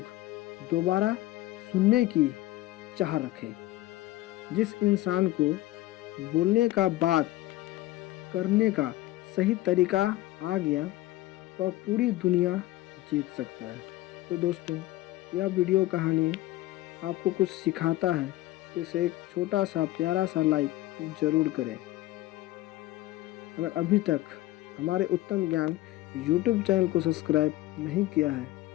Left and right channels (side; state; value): right; quieter; 16.5 dB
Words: दोबारा सुनने की चाह रखें। जिस इंसान को बोलने का, बात करने का सही तरीका आ गया, वह पूरी दुनिया जीत सकता है। तो दोस्तों, यह वीडियो कहानी आपको कुछ सिखाता है तो इसे एक छोटा सा प्यारा सा लाइक ज़रूर करें। अगर अभी तक हमारे उत्तम ज्ञान यूट्यूब चैनल को सब्सक्राइब नहीं किया है